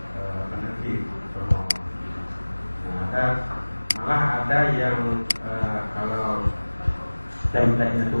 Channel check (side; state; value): both; inverted; correlation -1.00